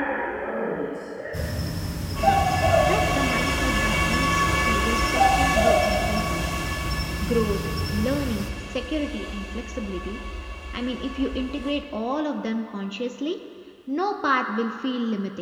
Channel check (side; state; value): both; identical; correlation 1.00